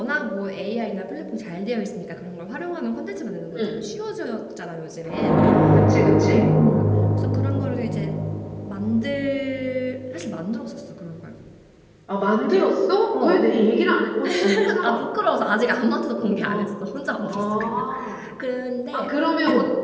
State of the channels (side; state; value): both; identical; correlation 1.00